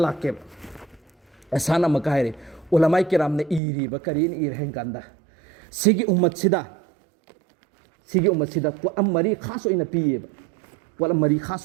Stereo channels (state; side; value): drops out; left; at 3.6 s